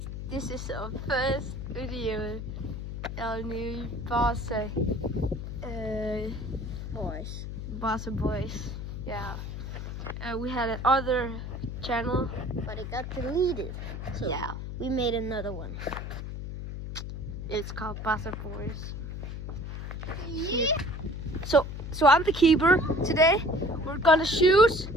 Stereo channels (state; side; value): noise; left; hum, 6 dB below the sound